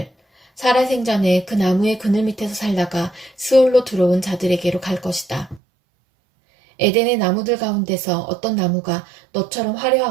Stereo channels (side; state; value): left; drops out; at 5.6 s